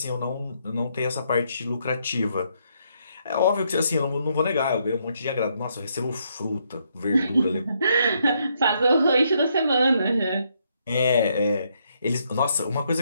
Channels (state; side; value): inverted; both; correlation -0.74